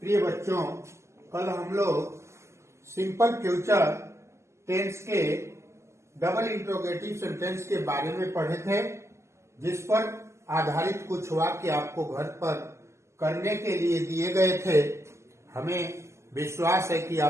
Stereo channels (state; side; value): late; left; 0.13 ms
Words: प्रिय बच्चों, कल हम लोग सिंपल फ्यूचर टेंस के डबल इंट्रोगेटिव सेंटेंस के बारे में पढ़े थे, जिस पर आधारित कुछ वाक्य आपको घर पर करने के लिए दिए गए थे। हमें विश्वास है कि